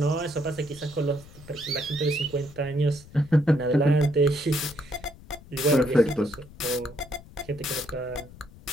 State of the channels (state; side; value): noise; left; rumble, 20 dB below the sound